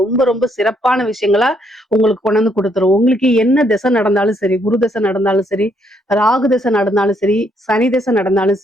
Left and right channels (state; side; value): normal; both; correlation 0.72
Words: ரொம்ப ரொம்ப சிறப்பான விஷயங்களா உங்களுக்கு கொண்டு வந்து கொடுத்துரும். உங்களுக்கு என்ன திசை நடந்தாலும் சரி, குரு திசை நடந்தாலும் சரி, ராகு திசை நடந்தாலும் சரி, சனி திசை நடந்தாலும்